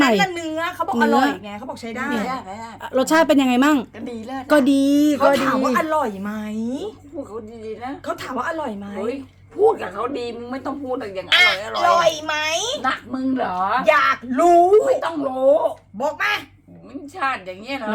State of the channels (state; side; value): identical; both; correlation 1.00